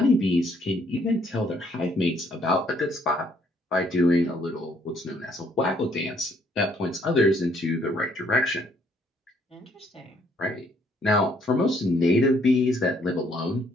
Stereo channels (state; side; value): normal; both; correlation 0.66